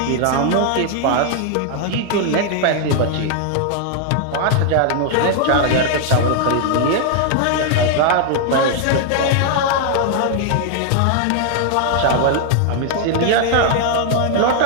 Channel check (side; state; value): both; different; correlation 0.00